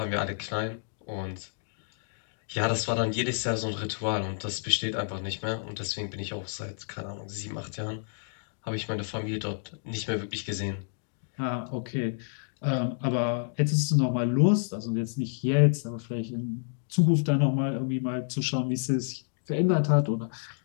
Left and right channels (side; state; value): right; silent; digital silence